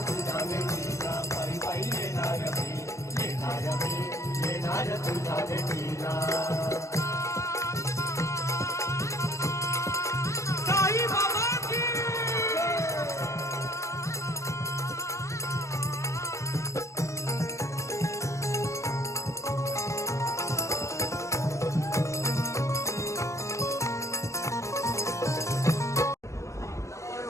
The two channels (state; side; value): late; right; 0.15 ms